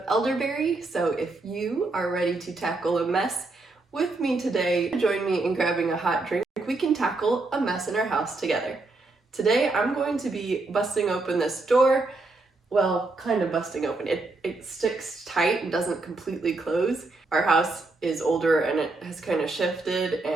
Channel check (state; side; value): quieter; left; 3.3 dB